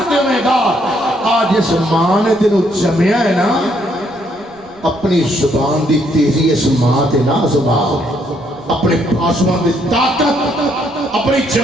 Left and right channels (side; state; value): right; noise; rumble, 27 dB below the sound